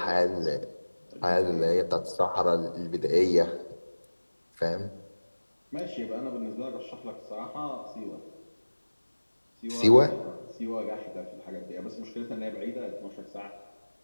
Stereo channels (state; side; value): inverted; both; correlation -1.00